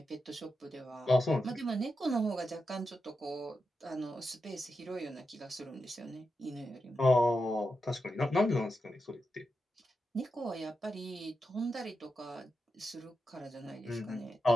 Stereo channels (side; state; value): both; normal; correlation 0.88